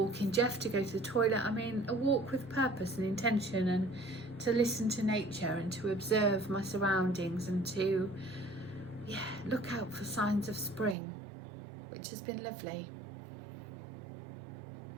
Jeff to go to the toilet. I mean a walk with purpose and intention, and to listen to nature and to observe my surroundings and to look out for signs of spring, which has been lovely.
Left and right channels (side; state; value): left; drops out; at 11.0 s